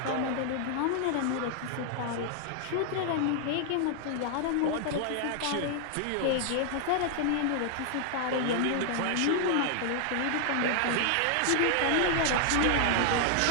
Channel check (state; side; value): different; both; correlation 0.00